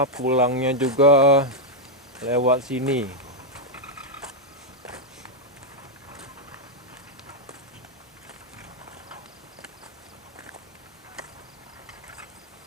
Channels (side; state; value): both; normal; correlation -0.01